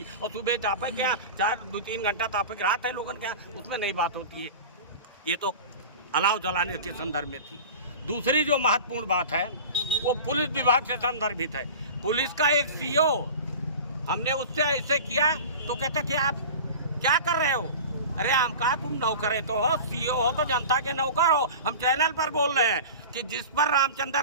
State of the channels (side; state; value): both; inverted; correlation -0.34